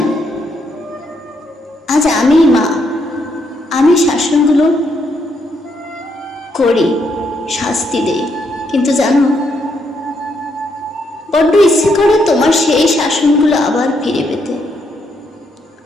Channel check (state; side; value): normal; both; correlation 0.76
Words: না। আজ আমি মা, আমি শাসনগুলো করি, শাস্তি দেই, কিন্তু জানো বড্ড ইচ্ছে করে তোমার সেই শাসনগুলো আবার ফিরে পেতে।